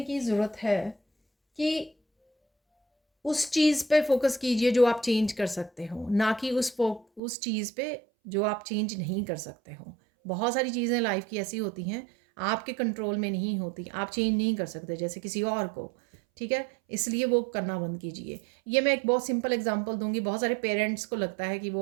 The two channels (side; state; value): left; drops out; at 7.2 s